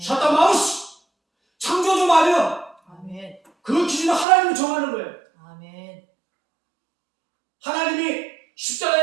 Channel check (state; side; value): drops out; left; at 4.2 s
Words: 샤타 마우스 창조주 마음이야. 아멘. 그 기준은 하나님이 정하는 거예요. 아멘. 하나님이